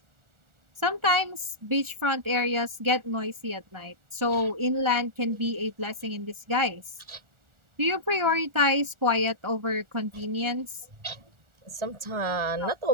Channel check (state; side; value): late; left; 1.4 ms